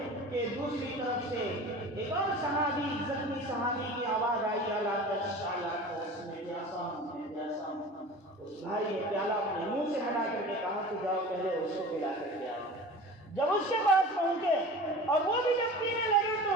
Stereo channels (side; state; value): both; normal; correlation 0.37